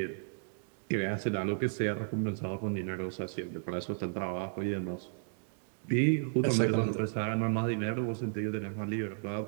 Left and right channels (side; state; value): left; silent; digital silence